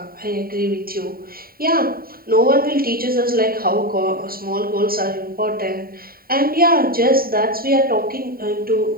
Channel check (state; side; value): late; left; 0.43 ms